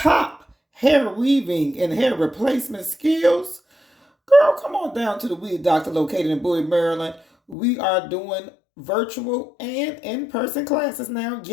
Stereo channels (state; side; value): drops out; right; at 7.6 s